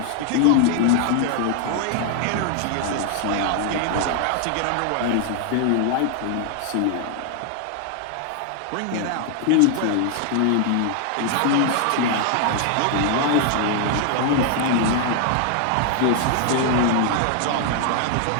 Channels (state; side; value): different; both; correlation 0.00